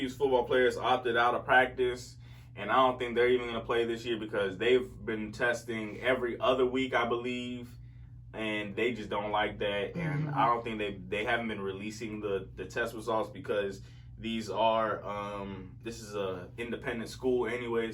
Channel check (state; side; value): identical; both; correlation 1.00